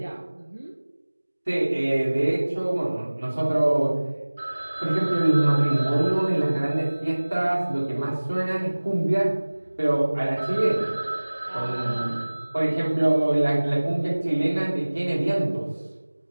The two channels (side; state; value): both; inverted; correlation -1.00